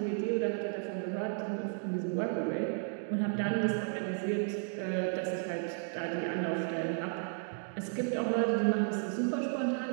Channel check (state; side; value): silent; left; 55 dB below the other